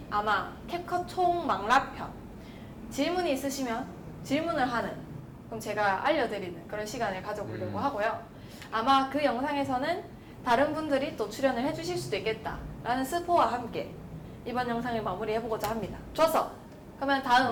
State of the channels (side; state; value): both; identical; correlation 1.00